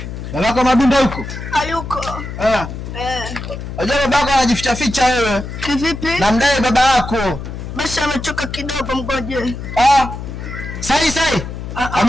Babako Madundo huko? Hayuko. Unajua babako anajificha ficha wewe. Kivipi? Na mdai baba yako. Basi ametoka kidogo, mgoje. Sai.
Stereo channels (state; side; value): noise; left; hum, 8 dB below the sound